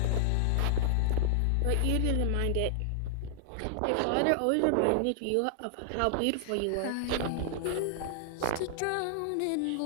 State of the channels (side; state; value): both; different; correlation -0.01